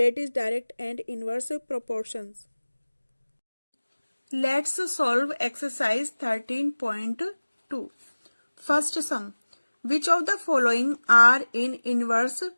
is direct and inverse proportions. Let's solve exercise 13.2. First sum. Which of the following are in inverse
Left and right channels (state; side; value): inverted; both; correlation -1.00